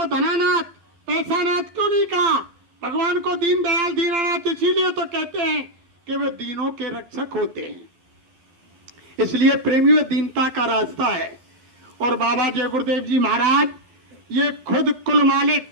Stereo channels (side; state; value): left; late; 12 ms